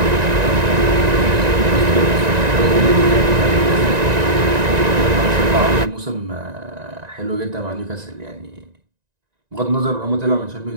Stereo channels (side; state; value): left; late; 1.9 ms